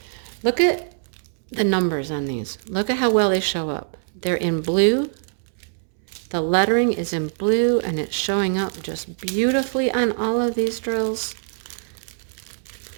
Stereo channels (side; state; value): left; silent; 63 dB below the other